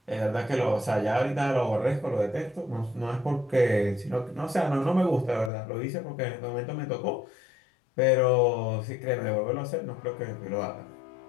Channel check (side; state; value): right; drops out; at 5.5 s